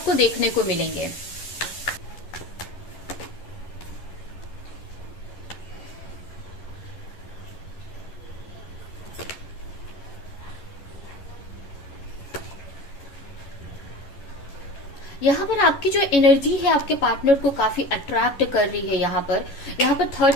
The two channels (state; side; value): late; right; 11 ms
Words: देखने को मिलेंगे। यहाँ पर आपकी जो एनर्जी है आपके पार्टनर को काफी अट्रैक्ट कर रही है। यहाँ पर थर्ड